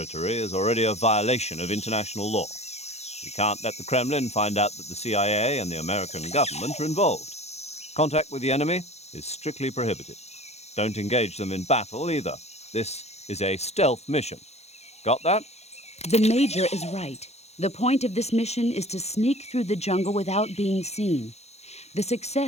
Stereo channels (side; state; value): right; late; 0.31 ms